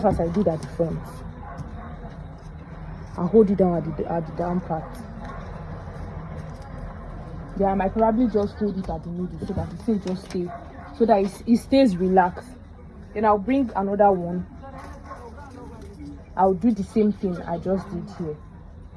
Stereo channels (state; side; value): identical; both; correlation 1.00